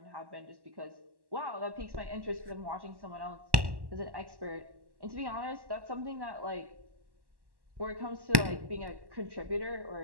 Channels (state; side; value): late; left; 1.1 ms